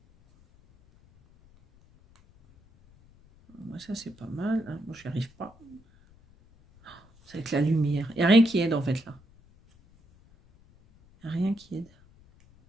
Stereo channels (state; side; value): noise; left; rumble, 28 dB below the sound